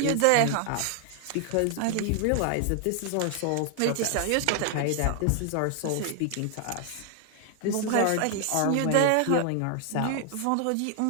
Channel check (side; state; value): both; different; correlation 0.00